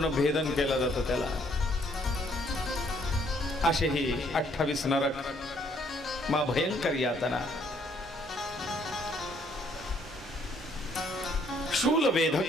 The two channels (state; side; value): normal; both; correlation 0.67